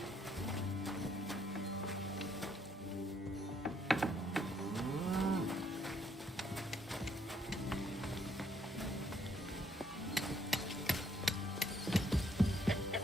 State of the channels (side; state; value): both; normal; correlation 0.70